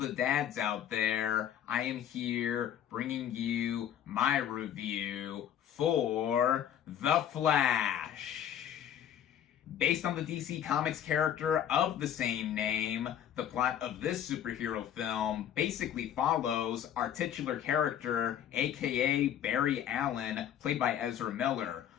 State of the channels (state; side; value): quieter; right; 10.0 dB